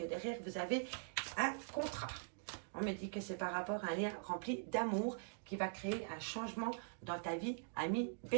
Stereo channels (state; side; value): silent; left; digital silence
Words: derrière, vous avez un contrat. On me dit que c'est par rapport à un lien rempli d'amour qui va créer un changement dans ta vie, ami